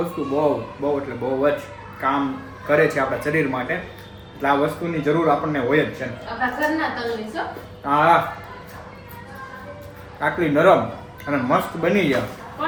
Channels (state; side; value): identical; both; correlation 1.00